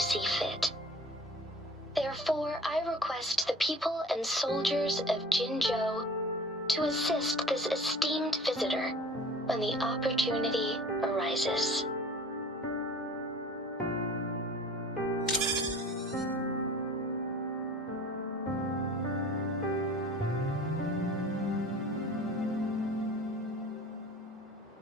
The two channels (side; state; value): both; normal; correlation 0.44